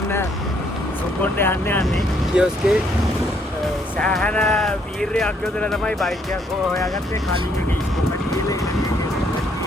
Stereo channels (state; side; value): normal; both; correlation 0.69